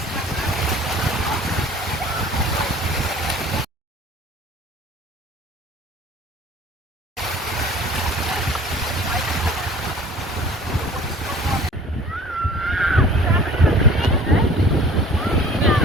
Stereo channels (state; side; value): normal; both; correlation 0.47